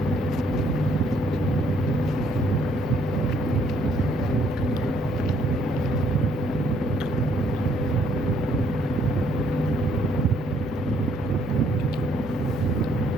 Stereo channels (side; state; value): both; normal; correlation 0.67